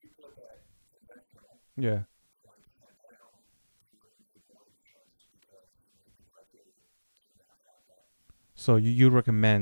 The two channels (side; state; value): both; inverted; correlation -1.00